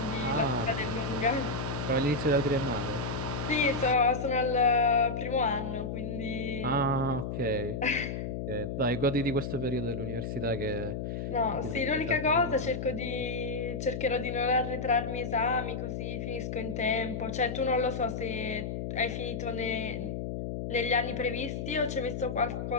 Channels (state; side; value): noise; left; hum, 4 dB below the sound